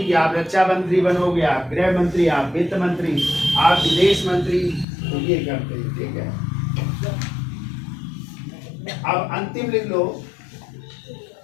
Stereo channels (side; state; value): right; drops out; at 4.9 s